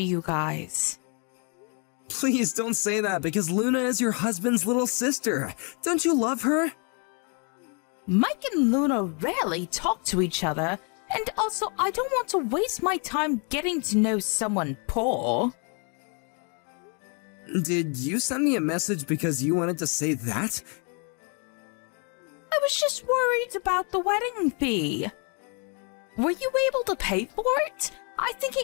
you guys. Please don't say that, because Luna is your husband's little sister. Don't you love her? Mike and Luna rarely talk to each other, and also I don't want to waste my time getting to know someone poor. Did you send me a message because you wanted to say that? I was just worried about the wedding fee. Were you able to pay for it? I think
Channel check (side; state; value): right; quieter; 36.8 dB